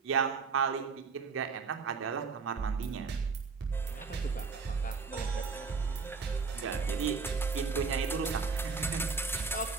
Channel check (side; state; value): left; quieter; 5.0 dB